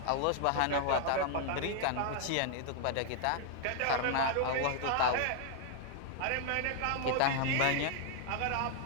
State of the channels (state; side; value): different; both; correlation 0.00